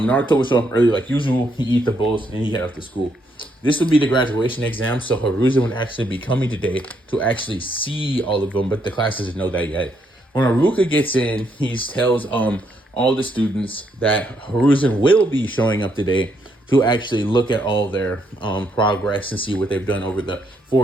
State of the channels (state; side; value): normal; both; correlation 0.75